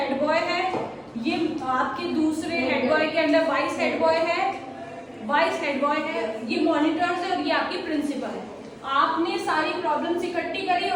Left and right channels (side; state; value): both; identical; correlation 1.00